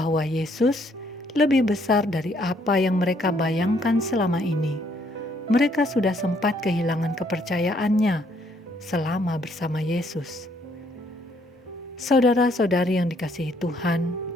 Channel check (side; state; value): both; normal; correlation 0.68